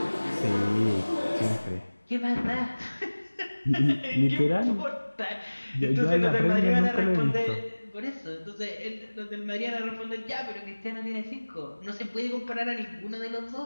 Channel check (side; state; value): both; inverted; correlation -1.00